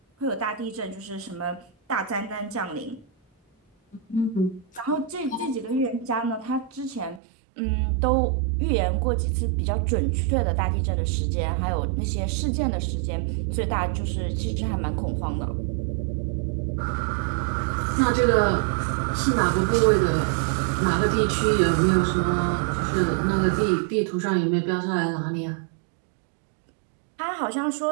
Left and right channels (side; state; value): left; drops out; at 7.2 s